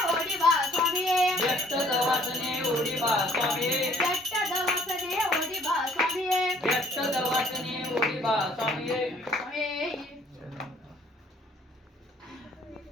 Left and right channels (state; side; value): normal; both; correlation 0.60